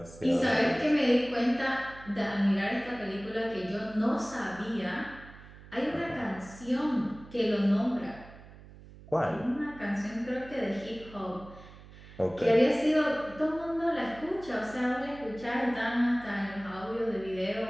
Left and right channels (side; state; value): right; noise; hum, 19 dB below the sound